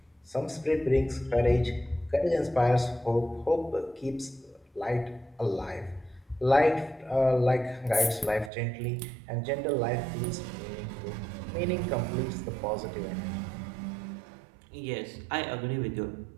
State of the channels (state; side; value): drops out; left; at 8.5 s